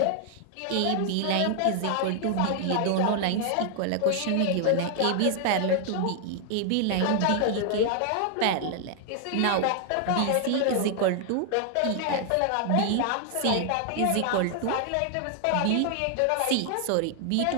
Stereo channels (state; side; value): different; both; correlation 0.00